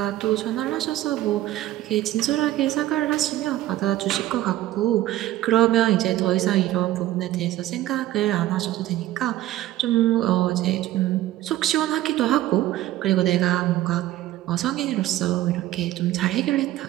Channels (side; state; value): left; quieter; 14.6 dB